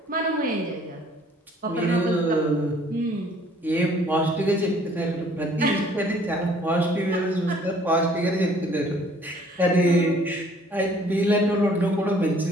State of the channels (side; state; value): both; normal; correlation 0.58